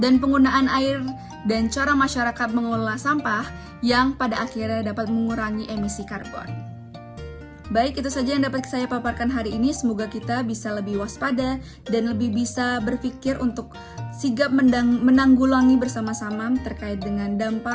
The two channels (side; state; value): both; identical; correlation 1.00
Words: dan penggunaan air dan cara masyarakat mengelola sampah yang pada akhirnya dapat mengurangi emisi karbon. Baik, itu saja yang dapat saya paparkan hari ini. Semoga kita bisa lebih waspada dan lebih bisa berpikir untuk sigap menanggulangi bersama-sama terkait dengan dampak